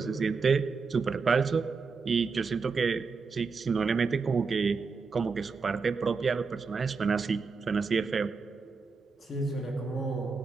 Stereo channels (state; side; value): quieter; left; 4.8 dB